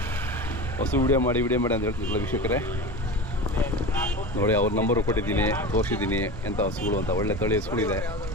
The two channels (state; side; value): normal; both; correlation 0.29